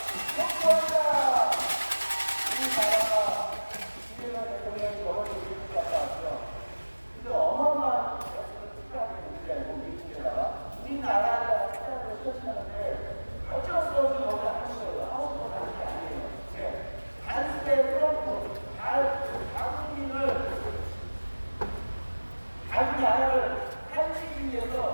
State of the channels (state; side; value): inverted; both; correlation -1.00